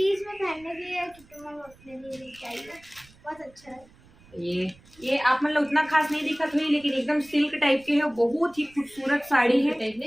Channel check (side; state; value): right; noise; rumble, 27 dB below the sound